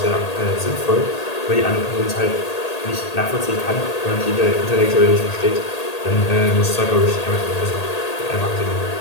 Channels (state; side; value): late; right; 1.8 ms